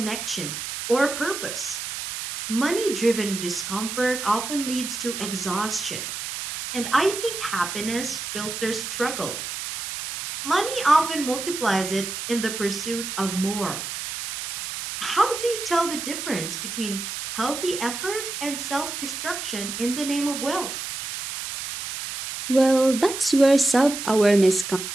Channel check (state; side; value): noise; right; hiss, 6 dB below the sound